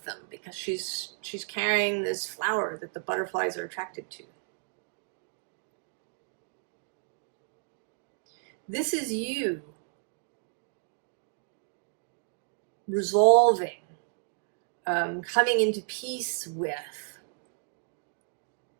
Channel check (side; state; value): left; silent; digital silence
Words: them because she's carrying this flower that the butterflies are attracted to. This is you resolving, coming into peace with